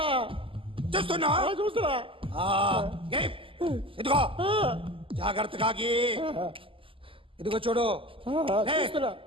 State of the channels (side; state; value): left; late; 0.25 ms